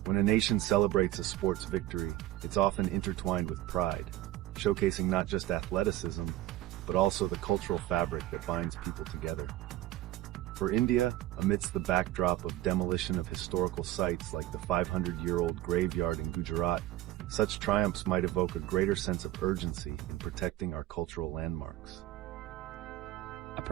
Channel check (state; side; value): quieter; left; 14.9 dB